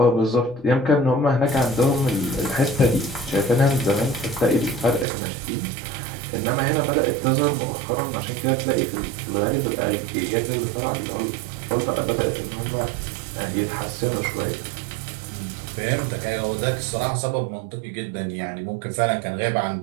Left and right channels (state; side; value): drops out; left; at 5.1 s